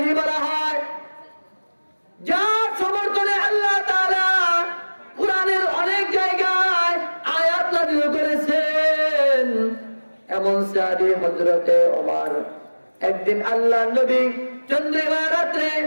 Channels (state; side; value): inverted; both; correlation -1.00